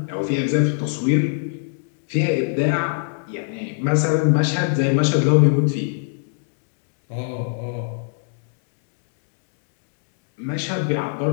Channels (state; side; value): silent; right; 62 dB below the other